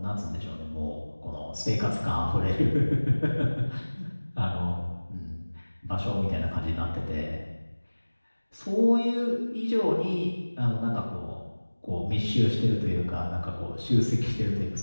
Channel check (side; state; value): both; inverted; correlation -1.00